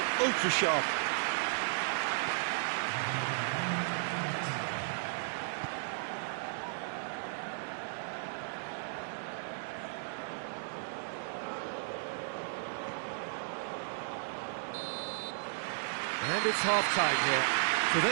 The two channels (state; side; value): silent; left; digital silence